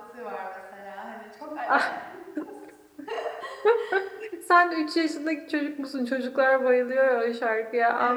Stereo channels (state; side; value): identical; both; correlation 1.00